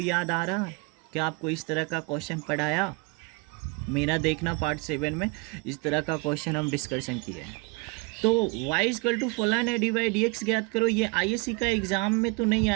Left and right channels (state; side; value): quieter; left; 27.9 dB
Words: याद आ रहा है? क्या आपको इस तरह का क्वेश्चन पढ़ाया? मेरा देखना पार्ट 7 में इस तरह का क्वेश्चन हम डिस्कशन किए हैं। तो y इक्वल टू फलन है, डी बाई डी एक्स ज्ञात करो। ये आईएससी का एग्ज़ाम में तो नहीं